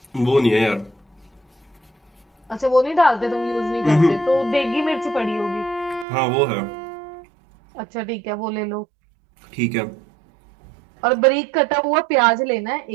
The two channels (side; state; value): left; drops out; at 6.1 s